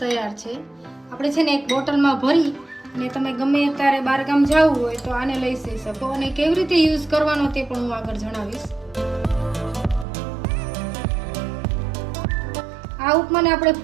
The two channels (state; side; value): drops out; left; at 10.1 s